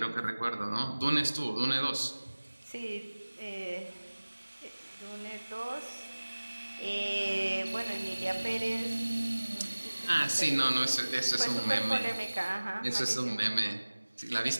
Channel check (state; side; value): inverted; both; correlation -1.00